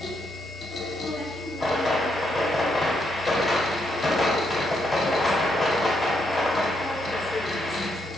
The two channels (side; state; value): right; noise; hum, 19 dB below the sound